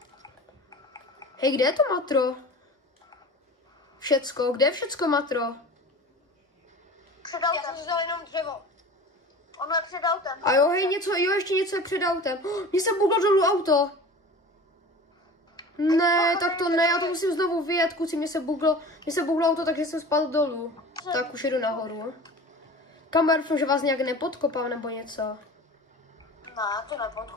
Hej, kde je to matro? Všecko, kde je všecko matro? Před autem. Já jsem vzal jenom dřevo. Ono je před autem. A jo, hej, ještě něco je před autem. Mně se buglo dolů auto. Ne, tak to ne, já to musím znovu vyjet, kluci, mně se buglo auto, takže jsem spadl dolů. Tak už jedu nahoru. Kamer, doufám, že vás nějak nepodkopám nebo něco. Ne, to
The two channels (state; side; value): normal; both; correlation 0.38